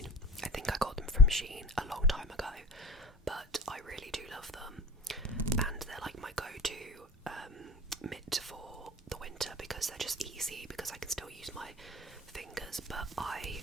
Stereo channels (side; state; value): both; normal; correlation 0.37